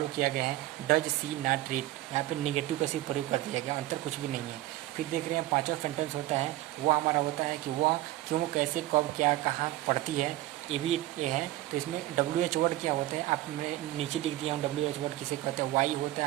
किया गया है। डज सी नॉट रीड, यहाँ पे नेगेटिव का सिर्फ प्रयोग कर दिया गया, अंतर कुछ भी नहीं है। फिर देख रहे हैं पांचवा सेंटेंस होता है, वो हमारा होता है कि वह क्यों, कैसे, कब, क्या, कहाँ पढ़ती है। ये है। तो इसमें WH वर्ड क्या होते हैं, आपने नीचे लिख दिया हूँ। WH वर्ड किसे कहते हैं, वाई होता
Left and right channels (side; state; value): left; quieter; 16.1 dB